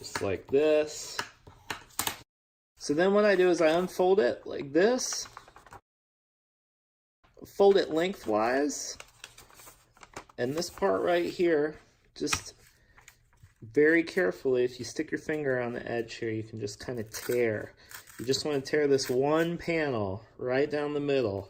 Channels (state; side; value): identical; both; correlation 1.00